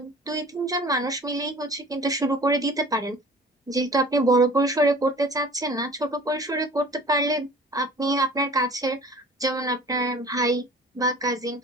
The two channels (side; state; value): both; normal; correlation 0.45